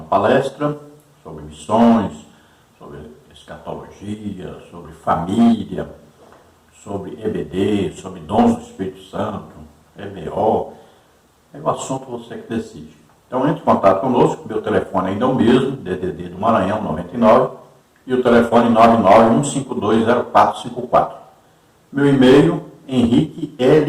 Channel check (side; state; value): both; identical; correlation 1.00